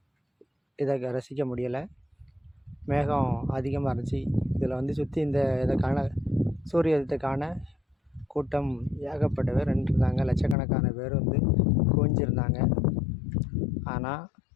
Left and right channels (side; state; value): right; drops out; at 10.6 s